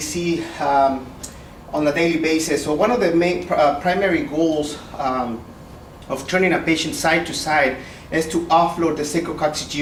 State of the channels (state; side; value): identical; both; correlation 1.00